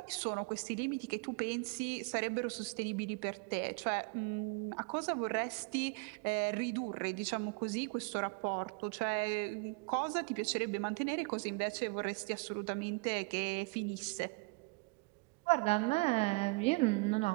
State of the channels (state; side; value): quieter; left; 29.4 dB